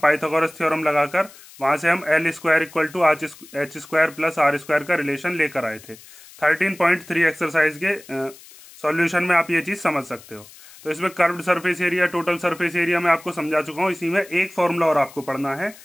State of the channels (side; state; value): left; noise; hiss, 21 dB below the sound